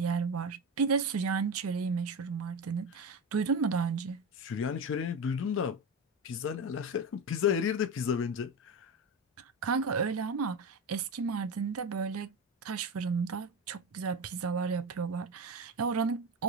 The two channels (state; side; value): normal; both; correlation 0.21